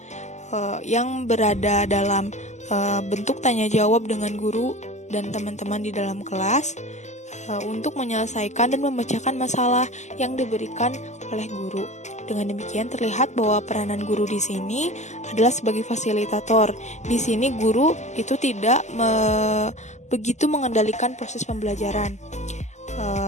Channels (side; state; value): right; late; 0.33 ms